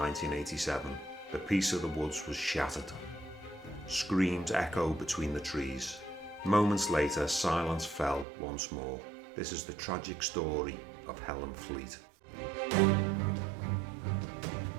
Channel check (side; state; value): left; drops out; at 8.2 s